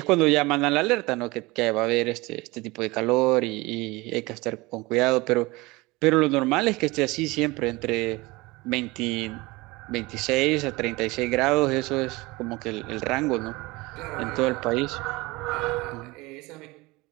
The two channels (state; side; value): quieter; left; 22.6 dB